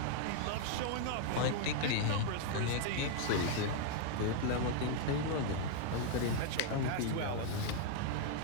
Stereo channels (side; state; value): both; different; correlation 0.00